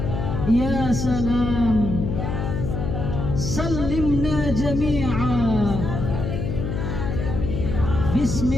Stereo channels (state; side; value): noise; left; hum, 3 dB below the sound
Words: Ya salam sallimna jami'a.